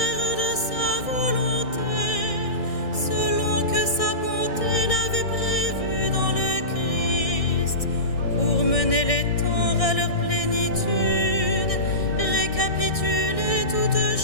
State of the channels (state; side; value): late; right; 1.6 ms